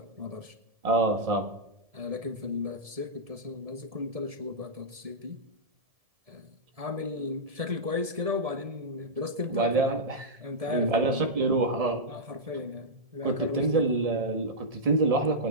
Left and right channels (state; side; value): late; left; 1.7 ms